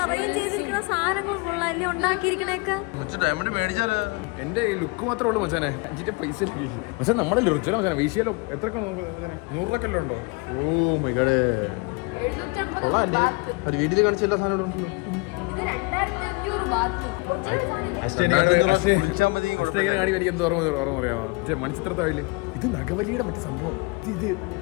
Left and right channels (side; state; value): right; quieter; 28.3 dB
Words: അറേഞ്ച് ചെയ്തിരിക്കുന്ന സാധനങ്ങൾ കൊള്ളാല്ലേ, ഉണ്ടാക്കിയിരിക്കണേക്കെ. ഡയമണ്ട് മേടിച്ചാല് എന്റെ ലുക്ക് മാത്രമേ ഉള്ളൂ മച്ചാനെ. 5 പൈസ പക്ഷെ നമ്മളെ രുചില മച്ചാനെ. വീശിയാലോ എത്രയൊക്കെ നമുക്ക് 100 രൂപ ഉണ്ടോ? ഓ മൈ ഗോഡ്, കൊള്ളാല്ലേ. ഒരു വീട്ടിൽ കാണിച്ച എല്ലാ സാധനവും ഉണ്ടല്ലോ. മണിച്ചിത്രത്താഴില് ഇത് നഗവലിയുടെ മറ്റു സംഭവം. ഇത്